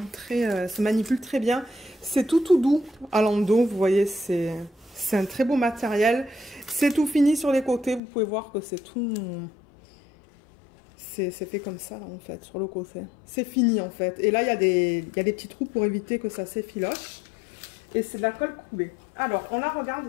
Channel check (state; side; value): drops out; right; at 8.0 s